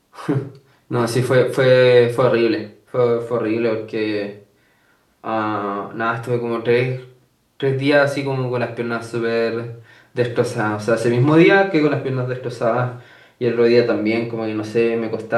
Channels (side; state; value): both; identical; correlation 1.00